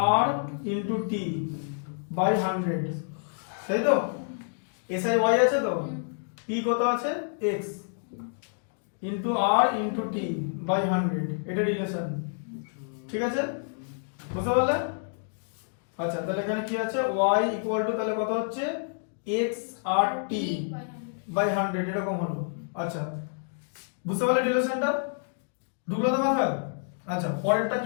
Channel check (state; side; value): silent; right; digital silence